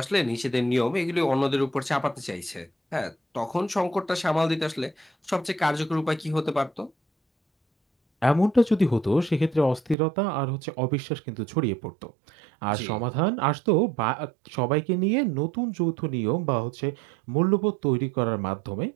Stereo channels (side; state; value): left; drops out; at 10.0 s